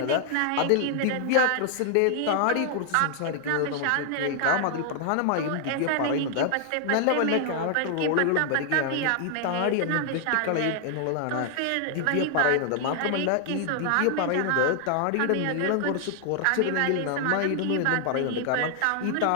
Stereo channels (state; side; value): different; both; correlation 0.00